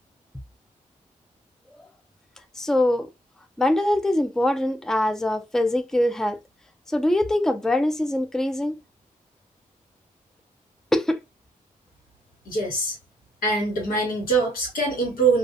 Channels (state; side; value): normal; both; correlation 0.77